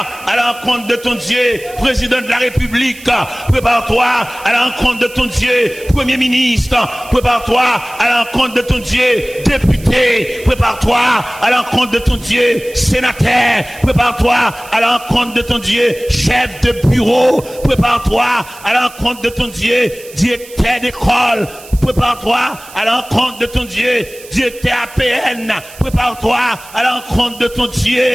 à la rencontre de ton Dieu président de la République. Prépare-toi à la rencontre de ton Dieu premier ministre. Prépare-toi à la rencontre de ton Dieu député. Prépare-toi à la rencontre de ton Dieu sénateur. Prépare-toi à la rencontre de ton Dieu chef de bureau. Prépare-toi à la rencontre de ton Dieu directeur d'école. Prépare-toi à la rencontre de ton Dieu, directeur APN. Prépare-toi à la rencontre de ton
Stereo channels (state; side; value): noise; right; hiss, 19 dB below the sound